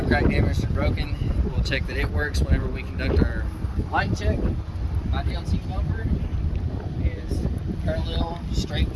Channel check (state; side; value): identical; both; correlation 1.00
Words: cracked, damaged, or broken. We'll check that it works whenever we conduct our light check. My DLT bumper is parallel, straight